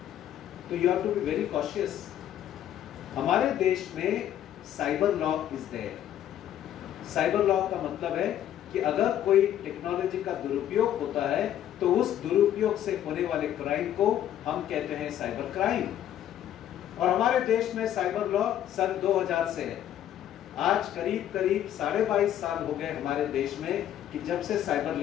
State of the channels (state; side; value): quieter; right; 11.1 dB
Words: तो you have to be very cautious. हमारे देश में cyber law is there. Cyber law का मतलब है कि अगर कोई टेक्नोलॉजी का दुरुपयोग होता है तो उस दुरुपयोग से होने वाले क्राइम को हम कहते हैं साइबर क्राइम। और हमारे देश में साइबर लॉ सन 2000 से है। आज करीब करीब 22.5 साल हो गए हमारे देश में कि जब से cyber